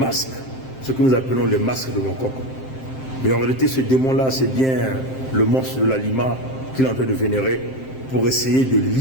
ce que nous appelons le masque de Mokoko. Mais en réalité, ce démon-là, c'est bien le monstre de la Lima qu'il est en train de vénérer pour essayer de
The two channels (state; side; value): late; right; 7.6 ms